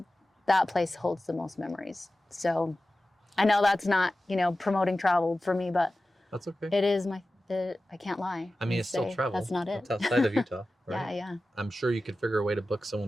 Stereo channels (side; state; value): both; normal; correlation 0.95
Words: that place holds the most memories. So I know that's not, you know, promoting travel for me, but that's okay. It is I can't lie. I mean, it's still travel. That's not it. It's outside of Utah, right? Yeah. I'm sure you could figure a way to book